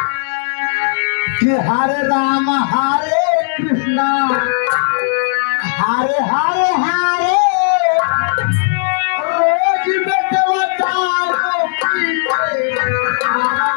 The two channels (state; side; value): silent; right; digital silence